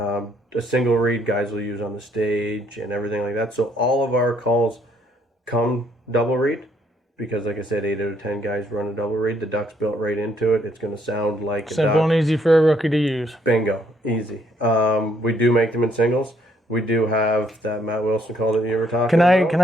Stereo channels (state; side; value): normal; both; correlation 0.69